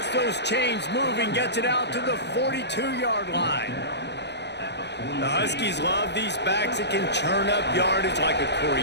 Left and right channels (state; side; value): late; right; 0.50 ms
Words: those chains moving, gets it out to the 42-yard line. The Huskies love these backs that can churn up yardage like a